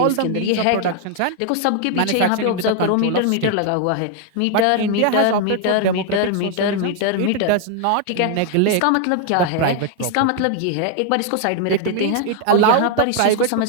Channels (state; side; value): different; both; correlation 0.00